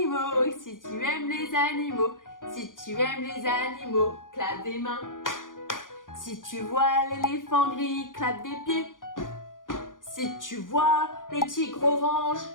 si tu aimes les animaux, si tu aimes les animaux, clappe des mains. Si tu vois l'éléphant gris, clappe des pieds. Si tu vois le tigre orange,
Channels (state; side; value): late; right; 0.89 ms